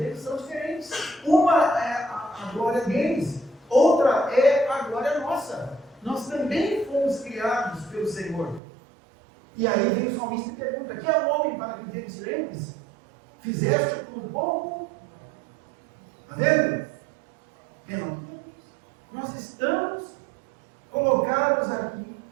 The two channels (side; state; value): left; drops out; at 8.6 s